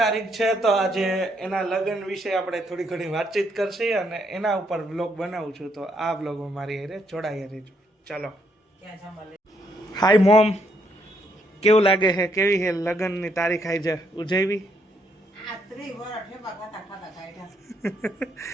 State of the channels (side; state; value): both; normal; correlation 0.73